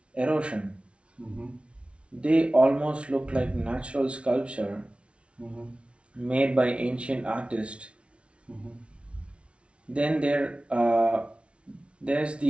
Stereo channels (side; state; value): left; late; 0.060 ms